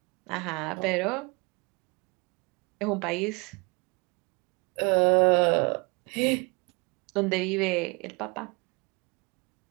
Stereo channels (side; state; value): left; quieter; 29.2 dB